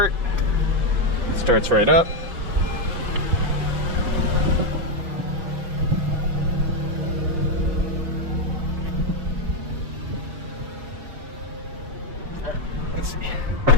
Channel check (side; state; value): left; late; 5.6 ms